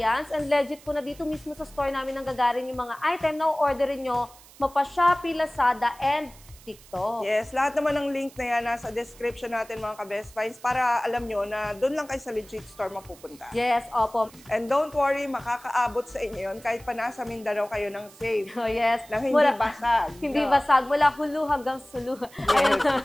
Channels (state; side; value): noise; right; hiss, 23 dB below the sound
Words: and legit po na dito mismo sa store namin nang gagaling yung mga item na orderin nyo mapa Shopee, Lazada, and TikTok. Yes, lahat naman ng link na yan nasa description natin mga ka-Best Finds para alam nyo na doon lang kayo sa legit store mapupunta. Yes, opo. And don't worry, makakaabot sa inyo yun kahit pa nasa Mindanao kayo ng safe. Oh, yes. Na hindi basag. Hindi basag. Mula hulu hanggang sulu. Yes,